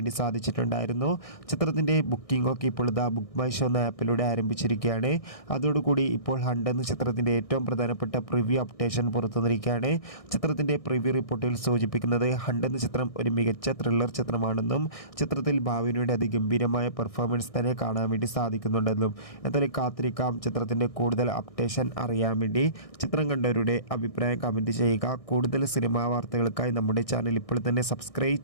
സാധിച്ചിട്ടുണ്ടായിരുന്നു. ചിത്രത്തിൻ്റെ ബുക്കിംഗ് ഒക്കെ ഇപ്പോൾ ബുക്ക് മൈ ഷോ എന്ന ആപ്പിലൂടെ ആരംഭിച്ചിരിക്കുകയാണ്. അതോടുകൂടി ഇപ്പോൾ ഹണ്ട് എന്ന ചിത്രത്തിൻ്റെ ഏറ്റവും പ്രധാനപ്പെട്ട പ്രിവ്യൂ അപ്ഡേഷൻ പുറത്തുവന്നിരിക്കുകയാണ്. ചിത്രത്തിൻ്റെ പ്രിവ്യൂ റിപ്പോർട്ടിൽ സൂചിപ്പിക്കുന്നത് ഹണ്ട് എന്ന ചിത്രം ഒരു മികച്ച ത്രില്ലർ ചിത്രമാണെന്നും ചിത്രത്തിൽ ഭാവനയുടെ അതിഗംഭീരമായ പെർഫോമൻസ് തന്നെ കാണാൻ വേണ്ടി സാധിക്കുന്നുണ്ടെന്നും. എന്തായാലും കാത്തിരിക്കാം ചിത്രത്തിൻ്റെ കൂടുതൽ അപ്ഡേഷൻ അറിയാൻ വേണ്ടി. ചിത്രം കണ്ടവരുടെ അഭിപ്രായം കമൻറ്റ് ചെയ്യുക. കൂടുതൽ സിനിമാ വാർത്തകൾക്കായി നമ്മുടെ ചാനൽ ഇപ്പോൾ തന്നെ സബ്സ്ക്രൈബ്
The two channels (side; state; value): right; late; 1.6 ms